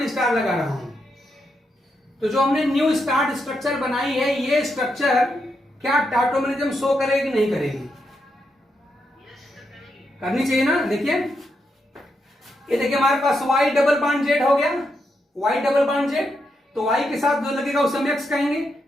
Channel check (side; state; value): both; normal; correlation 0.82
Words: स्टार लगा रहा हूं, तो जो हमने न्यू स्टार्ट स्ट्रक्चर बनाई है, ये स्ट्रक्चर क्या टाटोमेरिज्म शो करेगी नहीं करेगी? करनी चाहिए ना। देखिए ये देखिए हमारे पास Y डबल बॉन्ड जेड हो गया, Y डबल बॉन्ड जेड, तो Y के साथ जो लगेगा उसे हम X कहेंगे।